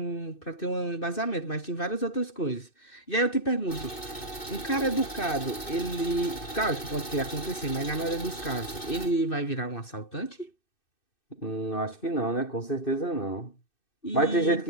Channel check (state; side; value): late; right; 2.6 ms